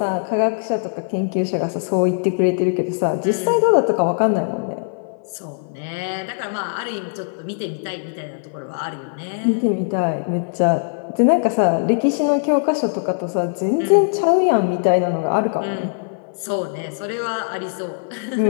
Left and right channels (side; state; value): right; silent; 57 dB below the other